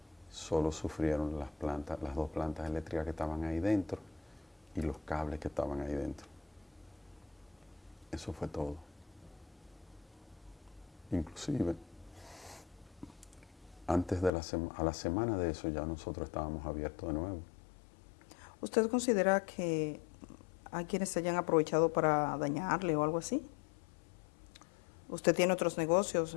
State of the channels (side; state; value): right; drops out; at 14.3 s